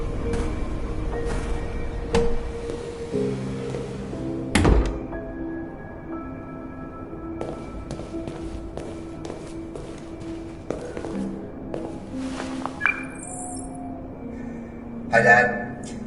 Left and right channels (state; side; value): identical; both; correlation 1.00